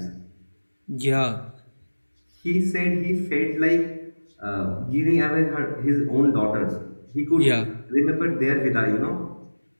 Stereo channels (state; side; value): inverted; both; correlation -1.00